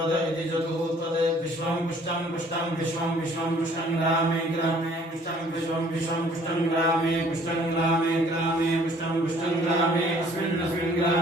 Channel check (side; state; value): both; normal; correlation 0.57